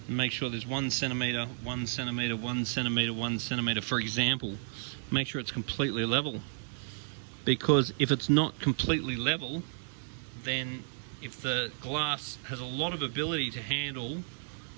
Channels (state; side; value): silent; left; digital silence